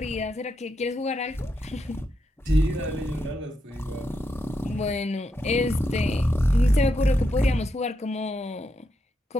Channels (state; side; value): normal; both; correlation 0.83